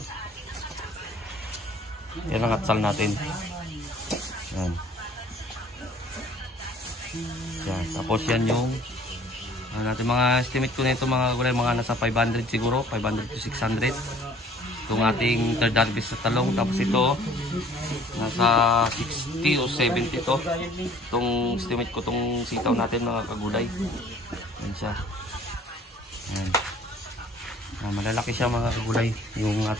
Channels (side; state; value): both; normal; correlation 0.54